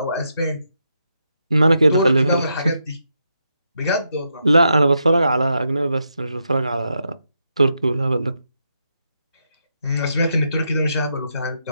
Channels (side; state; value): both; inverted; correlation -0.82